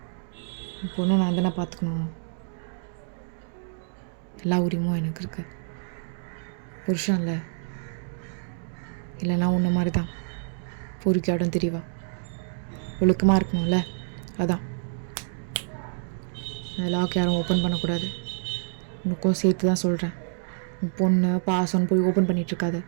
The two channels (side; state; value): left; silent; digital silence